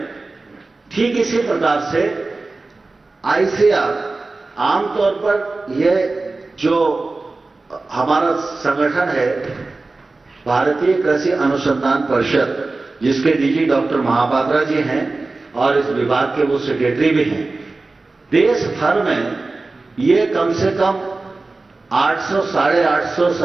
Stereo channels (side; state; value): left; quieter; 3.5 dB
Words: ठीक इसी प्रकार से आईसीआर आमतौर पर यह जो हमारा संगठन है भारतीय कृषि अनुसंधान परिषद, जिसके डीजी डॉक्टर महापात्रा जी हैं और इस विभाग के वो सेक्रेटरी भी हैं, देश भर में ये कम से कम 800 साढ़े 800